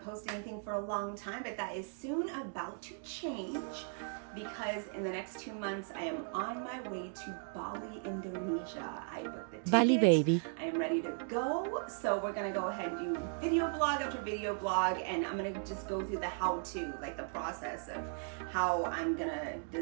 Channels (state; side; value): silent; left; 53 dB below the other